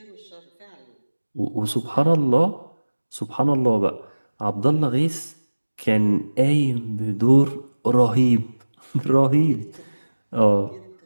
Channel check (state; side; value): inverted; both; correlation -1.00